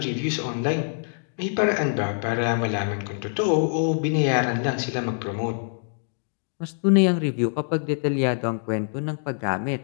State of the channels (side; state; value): right; silent; digital silence